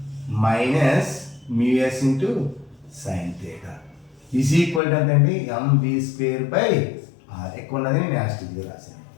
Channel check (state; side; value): drops out; right; at 4.8 s